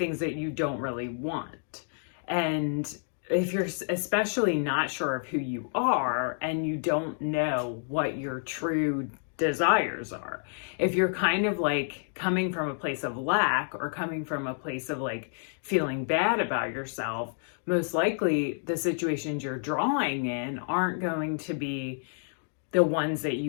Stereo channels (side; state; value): right; silent; digital silence